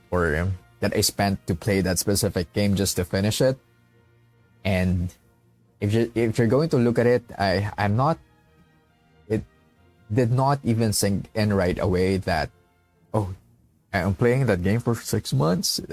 or that I spent to play that specific game just to finish it. And if you're going to look at it, I'm not, it did not even sink in right away that, oh, I'm playing that game for 6 months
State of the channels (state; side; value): identical; both; correlation 1.00